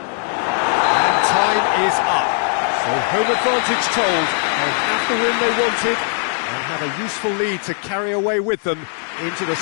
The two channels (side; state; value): right; silent; 59 dB below the other